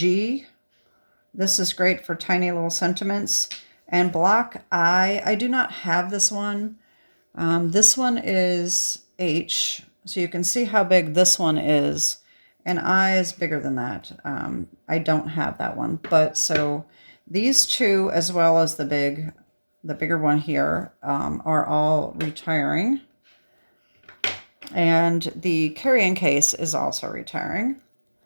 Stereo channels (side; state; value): both; inverted; correlation -1.00